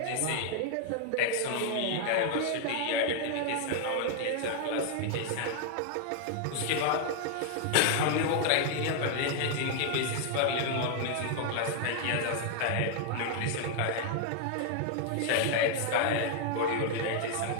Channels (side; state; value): both; different; correlation 0.00